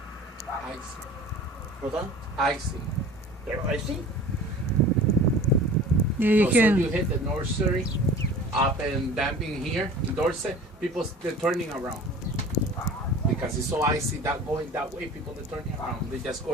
Icy. What's that? Icy. They're icy? Yeah, you So can. you hit the nursery up and damping here, in Dorset, people they're turning around. Because it's so icy that going that way, people are turning around. They just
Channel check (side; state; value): both; normal; correlation 0.42